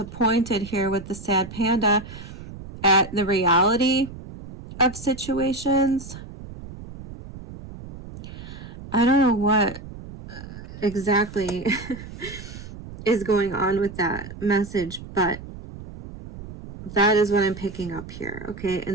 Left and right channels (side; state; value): right; noise; rumble, 13 dB below the sound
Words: here with the sad panda at the reality of situations. I don't know what exactly is going on with that message, but that is what I'm picking up here. Okay.